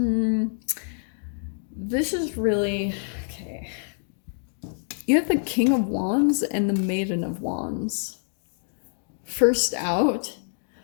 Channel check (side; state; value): right; silent; digital silence